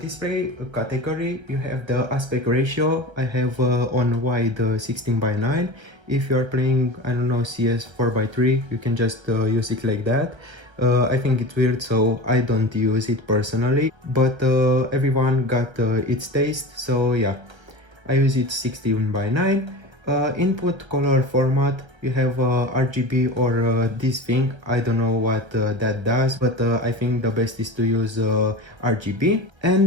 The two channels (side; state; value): left; late; 1.3 ms